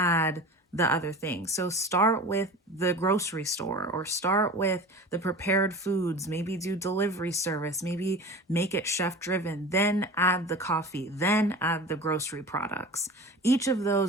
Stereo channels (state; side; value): normal; both; correlation 0.35